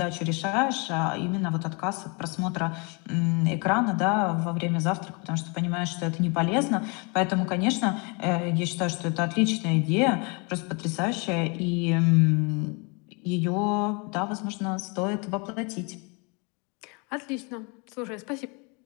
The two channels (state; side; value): quieter; right; 32.1 dB